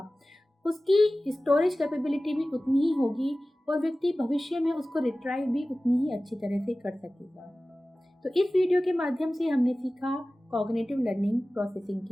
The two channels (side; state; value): both; normal; correlation 0.97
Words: उसकी स्टोरेज कैपेबिलिटी भी उतनी ही होगी और व्यक्ति भविष्य में उसको रिट्राइव भी उतनी ही अच्छी तरह से कर सकेगा। तो इस वीडियो के माध्यम से हमने सीखा कॉग्निटिव लर्निंग प्रोसेसिंग